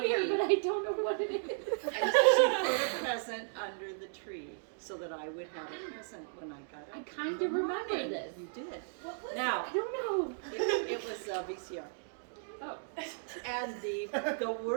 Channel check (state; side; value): silent; left; digital silence